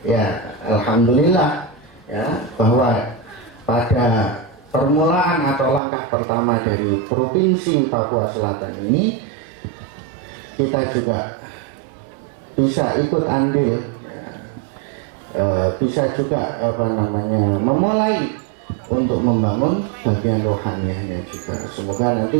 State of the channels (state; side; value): drops out; left; at 5.8 s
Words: ya alhamdulillah ya, bahwa pada permulaan atau langkah pertama dari Provinsi Papua Selatan ini, kita juga bisa ikut andil, ya, bisa juga memulai untuk membangun bagian rohaniahnya juga. Semoga